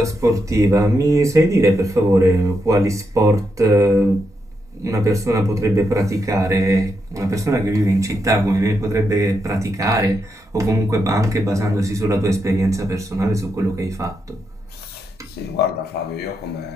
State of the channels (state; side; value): normal; both; correlation 0.83